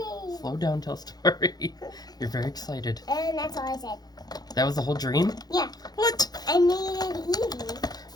Evie!" Slow down, tell a story. You're very excited. And that's all I said. That was the whole dream? Yeah. What? I made Evie.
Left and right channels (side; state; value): right; late; 0.19 ms